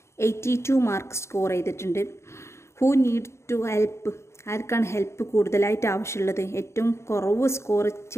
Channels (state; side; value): late; right; 0.13 ms